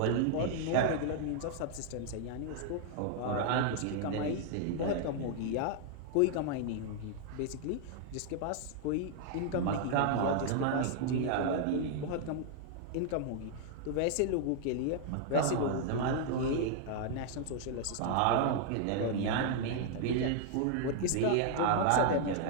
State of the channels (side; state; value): both; different; correlation -0.01